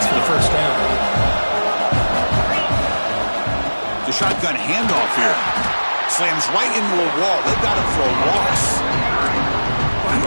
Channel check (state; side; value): inverted; both; correlation -1.00